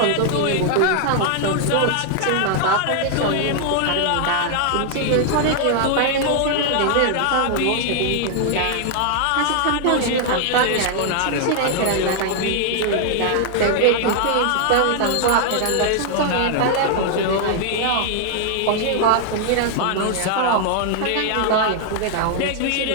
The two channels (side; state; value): both; different; correlation 0.00